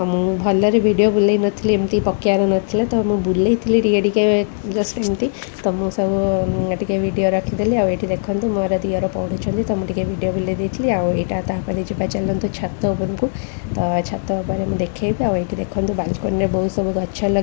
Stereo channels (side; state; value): right; silent; 58 dB below the other